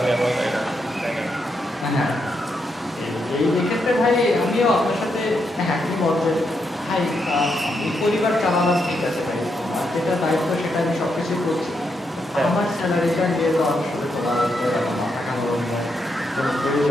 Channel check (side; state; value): both; normal; correlation 0.81